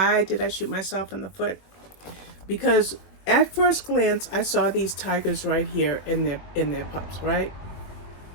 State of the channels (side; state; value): right; late; 21 ms